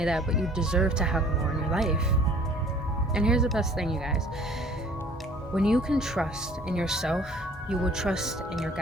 that, but you deserve to have more in your life. And here's the best thing, you guys. When you can trust in yourself, you will trust in your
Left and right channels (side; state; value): both; normal; correlation 0.52